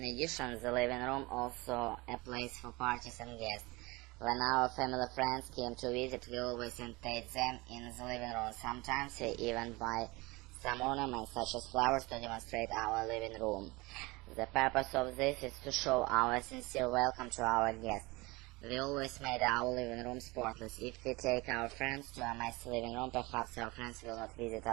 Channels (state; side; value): quieter; left; 23.4 dB